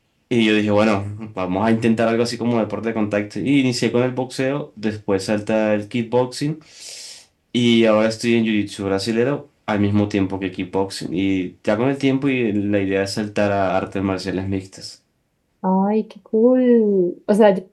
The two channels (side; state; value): both; identical; correlation 1.00